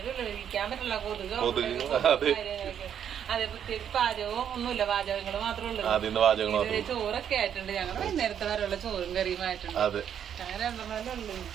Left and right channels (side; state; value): left; quieter; 8.9 dB